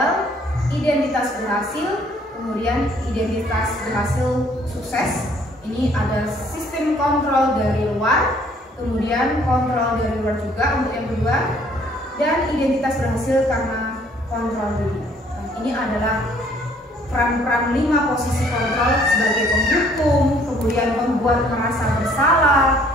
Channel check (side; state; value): both; normal; correlation 0.61